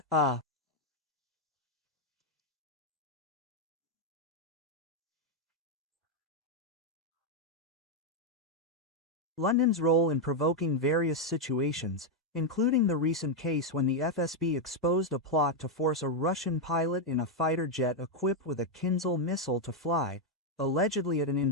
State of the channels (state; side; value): normal; both; correlation 0.01